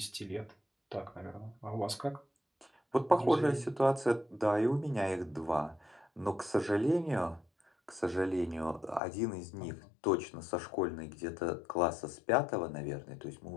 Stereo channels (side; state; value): right; drops out; at 9.0 s